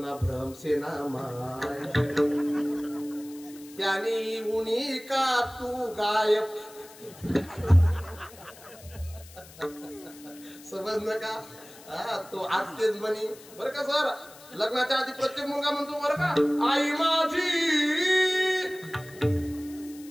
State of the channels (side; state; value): left; noise; hiss, 20 dB below the sound